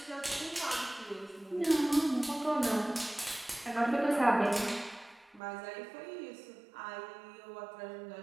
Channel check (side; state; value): left; drops out; at 5.4 s